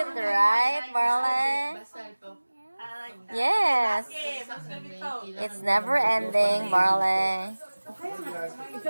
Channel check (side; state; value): both; inverted; correlation -1.00